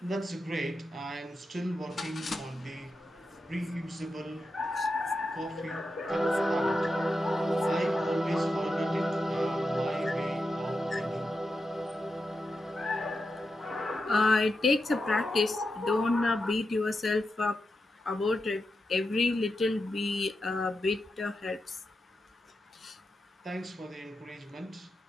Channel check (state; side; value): normal; both; correlation 0.88